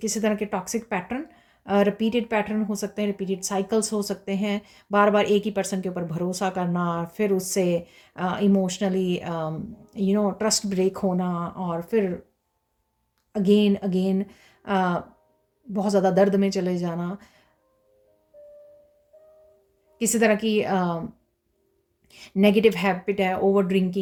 तरह के टॉक्सिक पैटर्न, रिपीटेड पैटर्न हो सकते हैं, रिपीटेड साइकिल्स हो सकते हैं, बार बार एक ही पर्सन के ऊपर भरोसा करना, फिर उससे इमोशनली ट्रस्ट ब्रेक होना और फिर अगेन अगेन बहुत ज़्यादा दर्द में चले जाना, किसी तरह की नेगेटिव हैबिट है, ओवर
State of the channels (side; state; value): both; identical; correlation 1.00